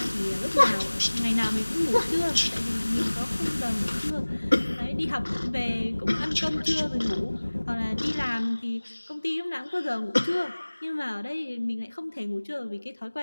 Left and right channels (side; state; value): both; inverted; correlation -1.00